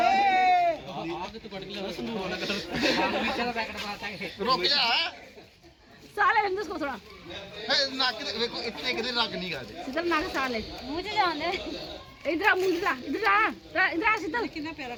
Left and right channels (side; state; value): both; identical; correlation 1.00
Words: आग तो कट गया संदूर वाला कलर चलो पैकेट पाता है रुक जा साले रंग उसको थोड़ा नाक देखो इतने किधर रख नहीं गा दे शीतल नाक साले मुझे जाने इधर आ मुंह इधर आ शीतल कितना प्यारा